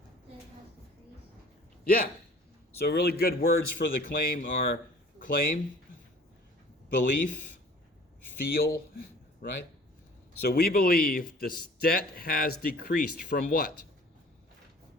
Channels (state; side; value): normal; both; correlation 0.50